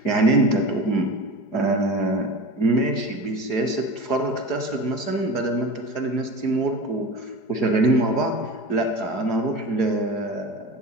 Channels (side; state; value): right; late; 4.9 ms